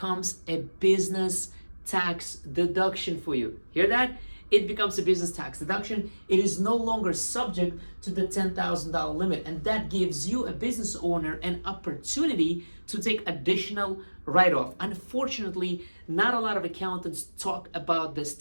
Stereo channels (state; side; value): inverted; both; correlation -1.00